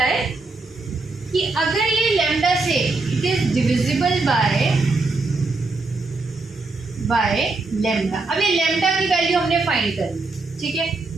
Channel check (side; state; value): left; quieter; 3.5 dB